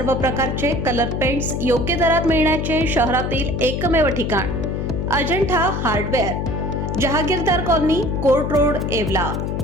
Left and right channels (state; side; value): noise; left; hum, 2 dB below the sound